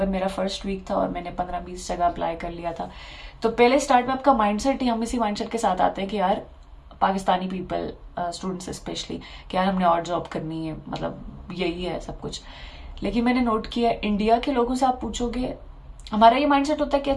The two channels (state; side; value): identical; both; correlation 1.00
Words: मेरा फर्स्ट वीक था और मैंने 15-20 जगह अप्लाई कर लिया था। तो पहले स्टार्ट में आपका माइंडसेट ही, हम इसी माइंडसेट के साथ आते हैं कि यार पाकिस्तानी पीपल, स्टूडेंट्स स्पेशली, कि यार हमने और जॉब करनी है, मतलब यही है सब कुछ। लेकिन मैंने नोट किया इंडिया के लोगों से आप पूछोगे, हमारा ये माइंडसेट होता है कि